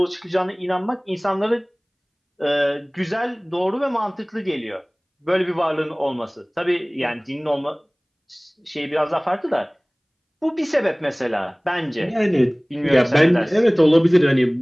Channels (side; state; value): both; identical; correlation 1.00